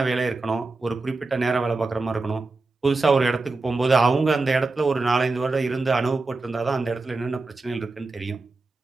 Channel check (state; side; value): quieter; left; 3.5 dB